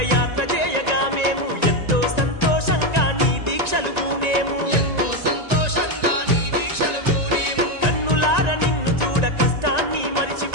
యాత్ర చేయగా మేము ఎంతో సంతోషంగా నీ దీక్షలు పూనేము ఎంతో సంతోషంగా నీ దీక్షలు పూనేము కన్నులార నిన్ను చూడ కష్టాన్ని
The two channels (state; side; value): late; left; 1.9 ms